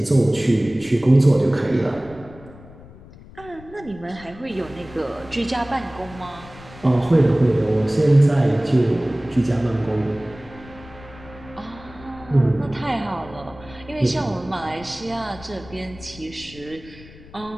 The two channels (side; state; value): left; noise; rumble, 19 dB below the sound